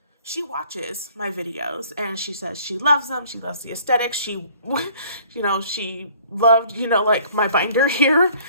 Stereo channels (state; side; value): inverted; both; correlation -0.55